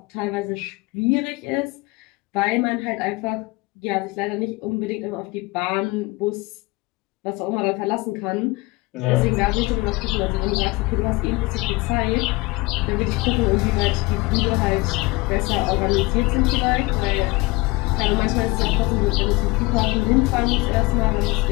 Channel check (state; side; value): quieter; right; 23.3 dB